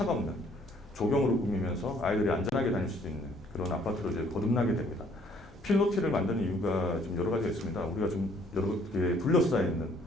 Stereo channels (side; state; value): both; normal; correlation 0.62